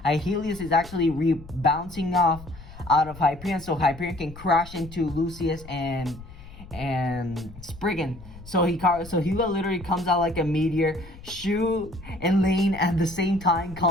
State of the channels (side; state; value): left; noise; rumble, 17 dB below the sound